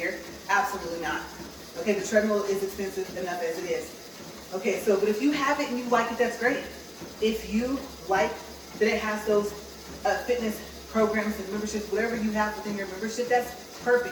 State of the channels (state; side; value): identical; both; correlation 1.00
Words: Absolutely not. Okay, the treadmill is expensive enough as it is. Okay, so, but if you have it and you like it, that's great. If you like that it has those fitness programs and memberships, whatever you have within your membership, that's